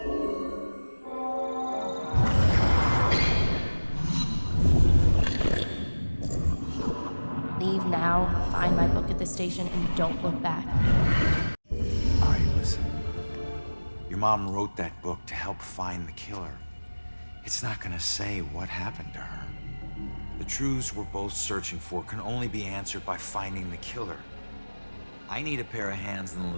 Leave now, find my book at the station, and don't look back. All right, listen. Your mom wrote that book to help find the killer. It's not gonna say what happened to her. The truths we're both searching for can only be answered by finding the killer. I need a pair of hands in the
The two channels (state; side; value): inverted; both; correlation -1.00